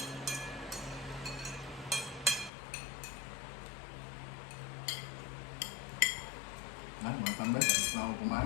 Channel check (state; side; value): drops out; right; at 2.5 s